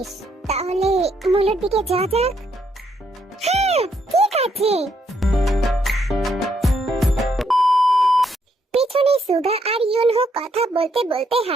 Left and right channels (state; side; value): normal; both; correlation 0.74